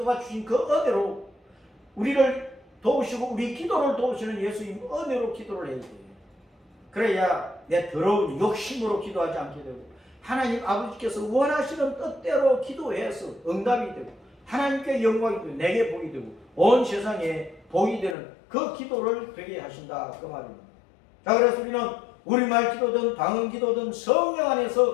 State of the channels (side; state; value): right; drops out; at 18.2 s